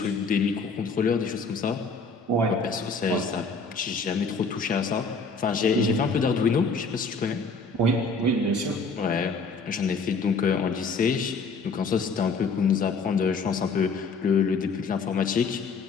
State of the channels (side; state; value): right; quieter; 4.1 dB